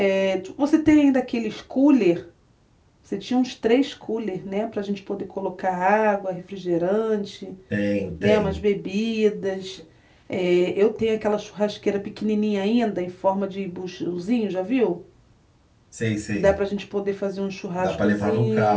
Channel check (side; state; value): both; identical; correlation 1.00